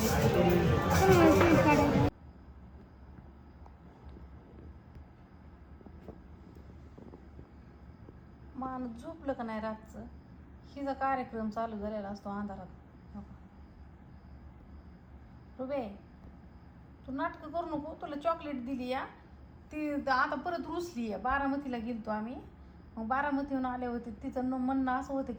माणूस झोपलं का नाही रातचं. हिचा कार्यक्रम चालू झालेला असतो अंधारात. रुबे तू नाटकं करू नको. तुला चॉकलेट दिली या ती आता परत रुसली आहे. बारामतीला गेलतो आम्ही. मग बारामतीहून आले होते. तिचं म्हणणं असं होतं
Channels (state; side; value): identical; both; correlation 1.00